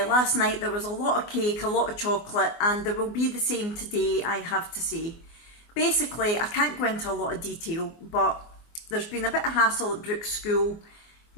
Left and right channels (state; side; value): late; right; 24 ms